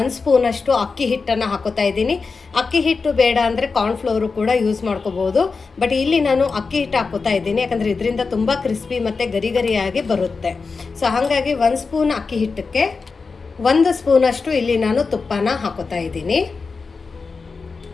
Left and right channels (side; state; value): right; quieter; 4.6 dB